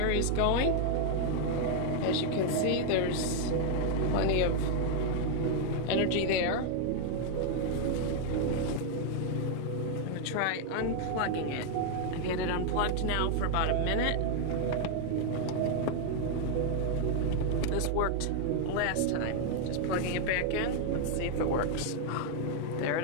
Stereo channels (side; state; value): both; different; correlation 0.00